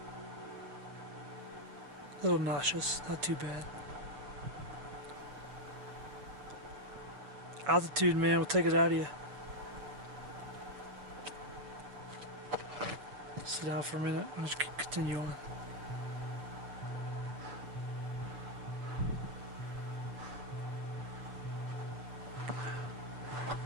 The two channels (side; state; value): left; late; 7.2 ms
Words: A little nauseous, not too bad. Altitude, man, will take it out of you. Sit down for a minute. I'll just continue on.